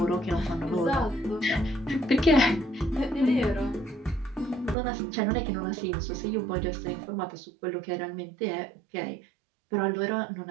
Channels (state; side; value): drops out; left; at 4.8 s